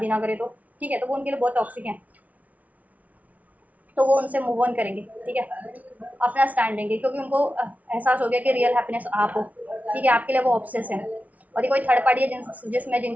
ना करे तो, ठीक है, तो वो उनके लिए बहुत टॉक्सिक हैं, तो वो उनसे मूव ऑन करेंगे, ठीक है, अपना स्टैंड लेंगे, क्योंकि उनको एहसास हो गया कि रियल हैप्पीनेस आप हो, ठीक है, आपके लिए वो ऑब्सेस है। और ये कोई थर्ड पार्टी है जिसमें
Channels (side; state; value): left; late; 0.071 ms